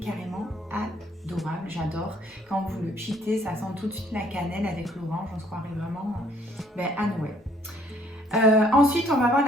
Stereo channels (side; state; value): both; normal; correlation 0.63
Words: carrément adorable, j'adore. Quand vous le pitez, ça sent tout de suite la cannelle avec l'orange, on se croirait vraiment à Noël. Ensuite, on va avoir